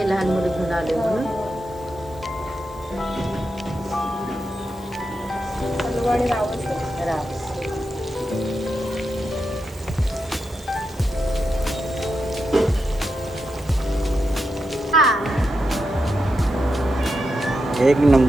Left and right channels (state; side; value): noise; right; hiss, 27 dB below the sound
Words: लहान मुलं घेऊन आले म्हणून. हलवा आणि रावस. राव. एक